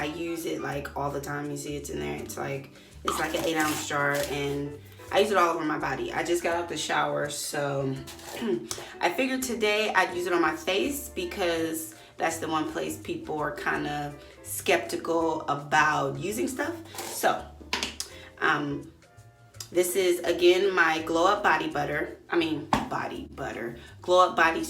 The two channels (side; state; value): both; identical; correlation 1.00